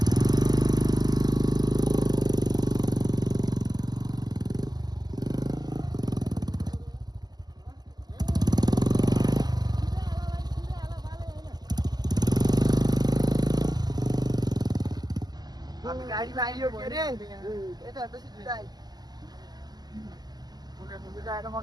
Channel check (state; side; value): late; left; 0.20 ms